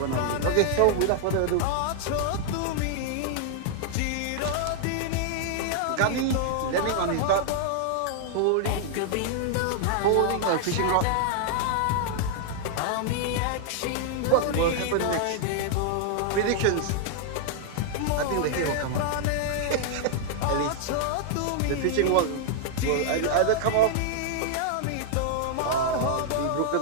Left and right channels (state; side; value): different; both; correlation -0.01